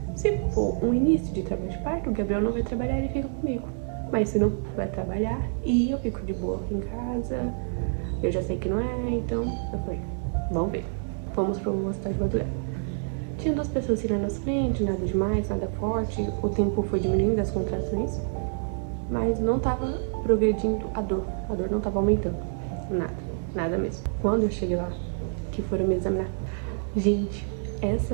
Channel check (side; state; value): left; silent; 60 dB below the other